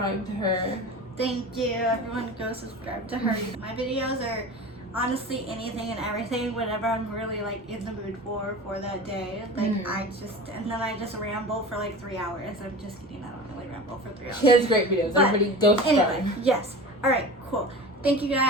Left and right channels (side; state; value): both; normal; correlation 0.34